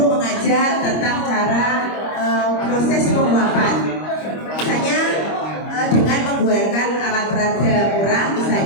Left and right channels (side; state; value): right; late; 25 ms